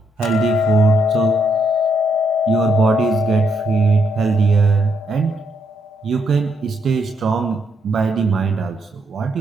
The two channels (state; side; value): normal; both; correlation 0.77